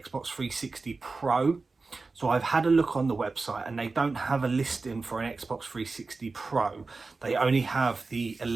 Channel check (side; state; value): left; quieter; 3.9 dB